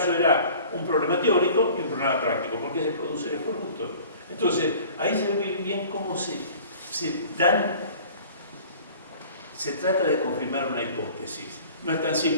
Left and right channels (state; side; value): inverted; both; correlation -0.47